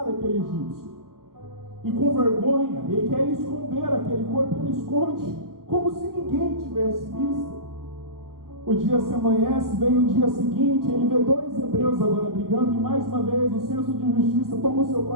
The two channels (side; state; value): left; late; 0.92 ms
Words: aquele egípcio. E com vergonha, ele quer esconder aquele corpo, ele esconde, como se ninguém tivesse visto. O dia se amanhece, vem o dia seguinte, ele vê dois hebreus agora brigando, e mais uma vez o senso de justiça toma o seu